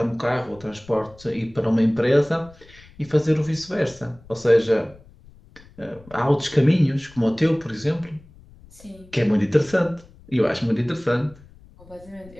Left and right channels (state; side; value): noise; left; rumble, 24 dB below the sound